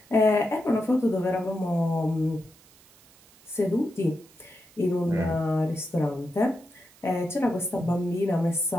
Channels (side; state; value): right; noise; hiss, 27 dB below the sound